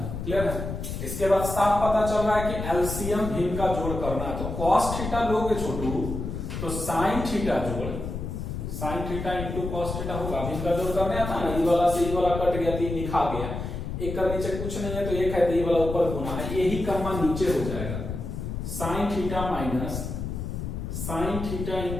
क्लियर है? इसके बाद साफ पता चल रहा है कि एलसीएम भिन्न का जोड़ करना है, तो कॉस थीटा लोगे छोटू तो साइन थीटा जोड़ sign theta into cos theta होगा, भिन्न का जोड़ करने आता ना, ई वाला से ई वाला कट गया, 3 लिखा गया, एक का नीचे कुछ नहीं है तो एक है तो ई वाला ऊपर गुना है, यही कर्मा नीचे हो जाएगा, sign theta minus sine theta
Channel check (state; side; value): noise; left; rumble, 5 dB below the sound